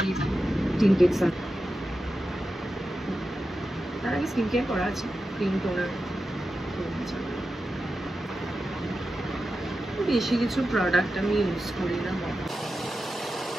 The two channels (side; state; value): both; normal; correlation 0.91